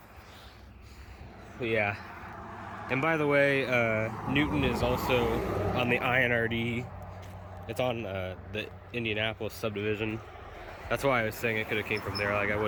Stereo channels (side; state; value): both; identical; correlation 1.00